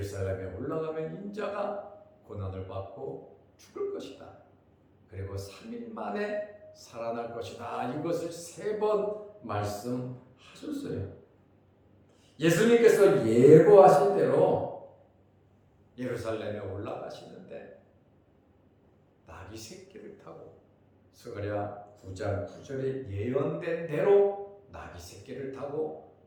올라가면 인자가 고난을 받고 죽을 것이다. 그리고 3일 만에 살아날 것이다. 이것을 3번 말씀하셨어요. 예수님께서 예고하신 대로 예루살렘에 올라가시는데 나귀 새끼를 타고 스가랴 9장 9절에 예언된 대로 나귀 새끼를 타고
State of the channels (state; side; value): identical; both; correlation 1.00